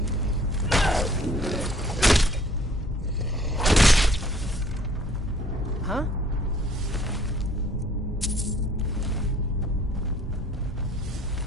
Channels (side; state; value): both; normal; correlation 0.57